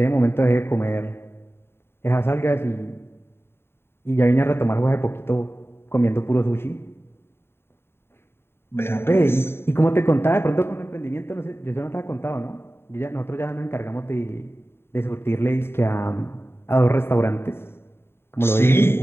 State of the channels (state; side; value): late; right; 0.11 ms